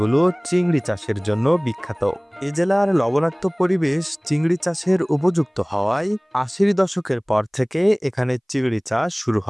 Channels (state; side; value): identical; both; correlation 1.00